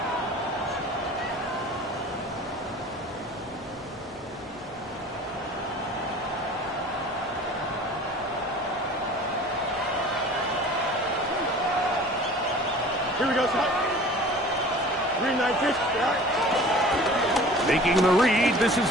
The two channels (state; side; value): normal; both; correlation 0.44